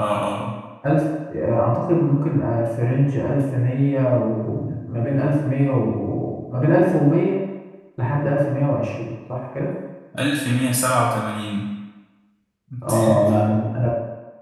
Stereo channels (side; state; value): both; identical; correlation 1.00